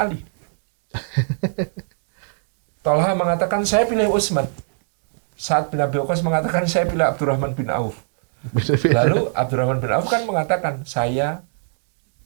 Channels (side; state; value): left; silent; digital silence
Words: Talha mengatakan, saya pilih Utsman. Sa'ad bin Abi Waqqas mengatakan, saya pilih Abdurrahman bin Auf. Lalu Abdurrahman bin Auf kan mengatakan, saya